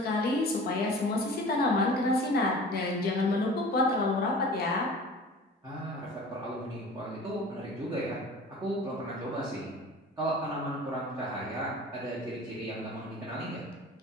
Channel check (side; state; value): both; normal; correlation 0.42